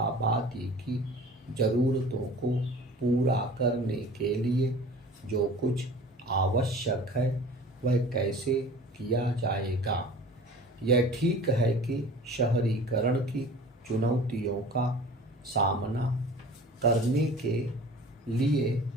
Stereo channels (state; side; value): normal; both; correlation 0.43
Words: की ज़रूरतों को पूरा करने के लिए जो कुछ आवश्यक है वह कैसे किया जाएगा। यह ठीक है कि शहरीकरण की चुनौतियों का सामना करने के लिए